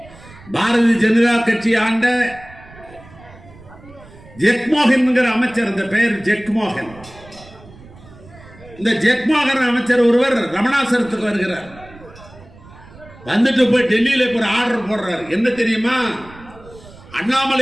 பாரதிய ஜனதா கட்சி ஆண்ட ஜெக்மோகன் என்கிற அமைச்சர், இந்த பெயர் ஜெக்மோகன். இந்த ஜெக்மோகன் அமைச்சர் ஒருவர் ரமணாசரத்துக்கு வருகிறார். வந்துட்டு போய் டெல்லியில ஒரு ஆர்டர் போடுறார். என்ன தெரியுமா?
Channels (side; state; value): right; noise; rumble, 21 dB below the sound